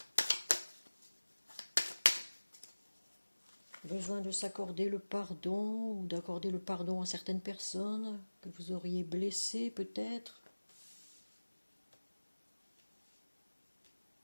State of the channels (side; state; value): both; inverted; correlation -1.00